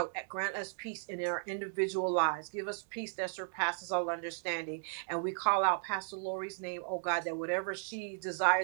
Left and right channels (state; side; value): silent; left; digital silence